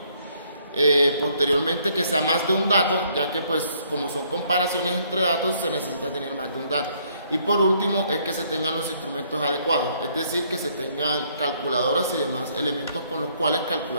Posteriormente que sea más de un dato, ya que pues como son comparaciones entre datos se necesita tener más de un dato. Y por último es que se tengan los instrumentos adecuados, es decir, que se tengan calculadoras y demás elementos con los cuales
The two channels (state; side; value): inverted; both; correlation -0.67